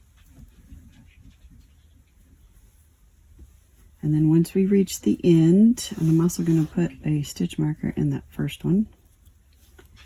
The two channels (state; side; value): identical; both; correlation 1.00